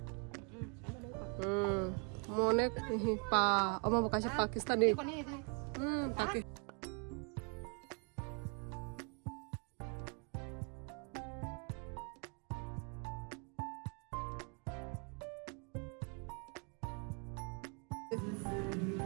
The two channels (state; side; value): quieter; left; 36.8 dB